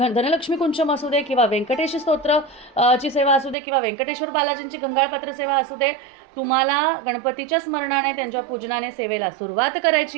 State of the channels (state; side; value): drops out; left; at 3.6 s